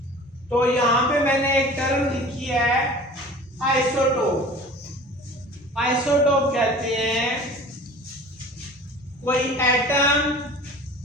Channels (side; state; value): both; normal; correlation 0.43